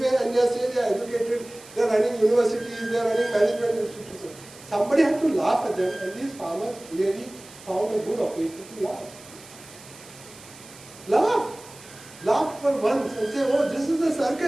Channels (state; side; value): noise; right; hiss, 20 dB below the sound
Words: and they are saying they are educated, they are running universities, they are running management institutions. Somebody had to laugh at them, and these farmers really found a good occasion to laugh. Laugh. Laugh for once and say, oh, this is the